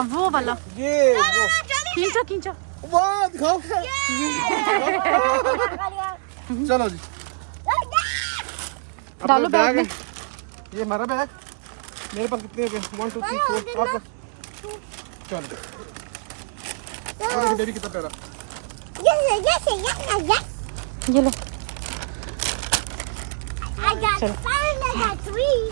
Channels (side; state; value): left; silent; digital silence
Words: वो वाला। ये वो खींचो खींचो। वाह दिखाओ। चलो जी डालो अपना बैग में। है। ये हमारा बैग, मेरे पास कितने हो गए? 1 2 3 4 आपका। चल और देखो बेबी कितना प्यारा। ये लो I got चलो। 5 I got 3.